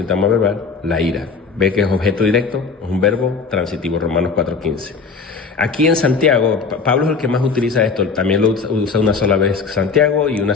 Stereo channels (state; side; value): quieter; right; 4.9 dB